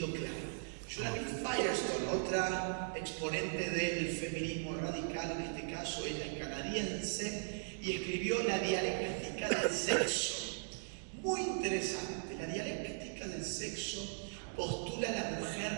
claro. Julia Firestone, otra exponente del feminismo radical, en este caso ella es canadiense, y escribió La dialéctica del sexo. Muy interesante. La dialéctica del sexo postula a la mujer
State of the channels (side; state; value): left; silent; digital silence